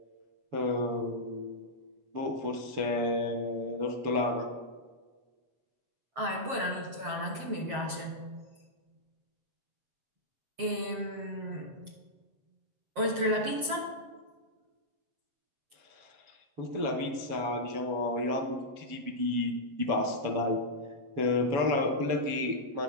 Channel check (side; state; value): left; late; 7.5 ms